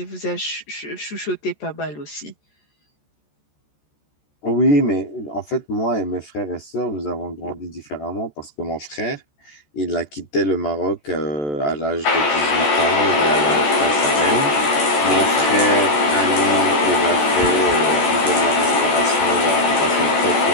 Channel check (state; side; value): late; right; 14 ms